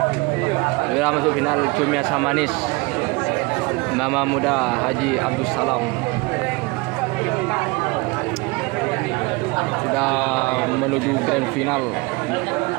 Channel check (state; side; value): quieter; left; 25.2 dB